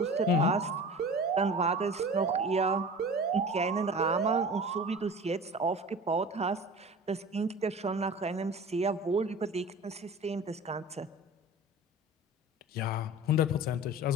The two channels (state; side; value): normal; both; correlation 0.38